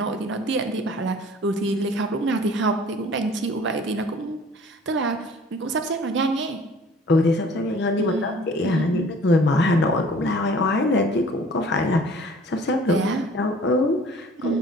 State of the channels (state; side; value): normal; both; correlation 0.50